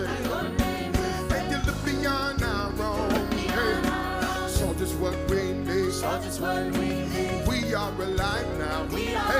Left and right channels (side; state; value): both; identical; correlation 1.00